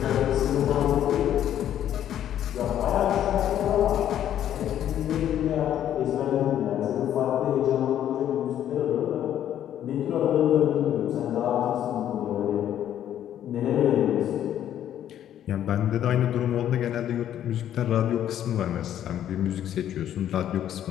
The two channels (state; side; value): quieter; right; 10.9 dB